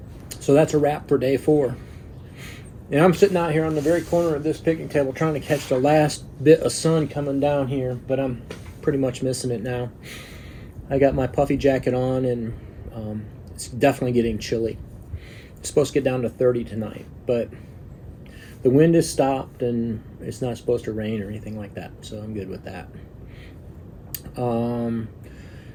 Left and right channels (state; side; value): identical; both; correlation 1.00